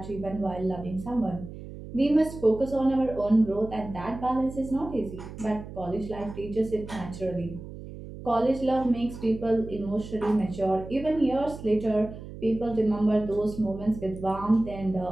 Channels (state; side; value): noise; right; hum, 13 dB below the sound